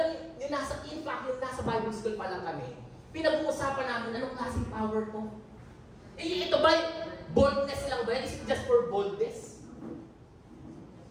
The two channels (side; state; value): both; identical; correlation 1.00